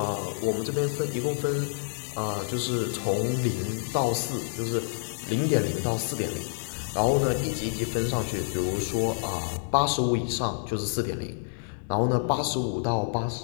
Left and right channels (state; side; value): silent; right; 59 dB below the other